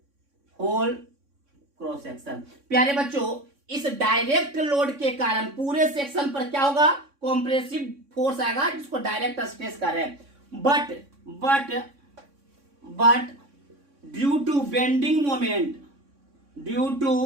section. प्यारे बच्चों इस डायरेक्ट लोड के कारण पूरे सेक्शन पर क्या होगा, कॉम्प्रेसिव फोर्स आएगा, जिसको डायरेक्ट स्ट्रेस कर रहे हैं। But due to bending moment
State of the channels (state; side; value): late; left; 3.6 ms